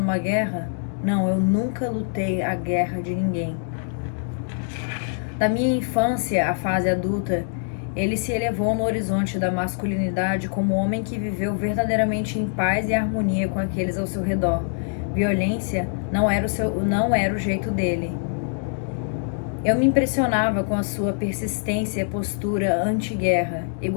guerra? Não, eu nunca lutei a guerra de ninguém. Da minha infância à fase adulta, ele se elevou no horizonte da masculinidade como homem que viveu verdadeiramente em paz e harmonia com aqueles ao seu redor. Violência não era o jeito dele. Eu me impressionava com a sua persistência e postura anti-guerra,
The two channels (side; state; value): right; silent; 63 dB below the other